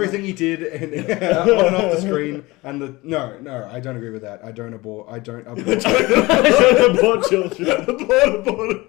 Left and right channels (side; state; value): right; quieter; 21.6 dB